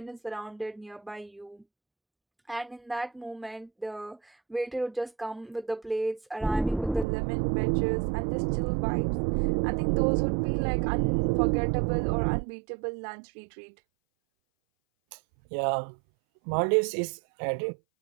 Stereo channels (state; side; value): drops out; left; at 7.1 s